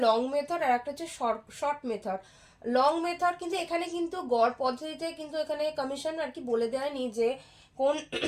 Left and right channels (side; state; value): both; identical; correlation 1.00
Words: লং মেথড আর একটা হচ্ছে শর্ট মেথড। লং মেথড কিন্তু এখানে কিন্তু গড় পদ্ধতিতে কিন্তু এখানে কমিশন আর কি বলে দেয়নি যে কোন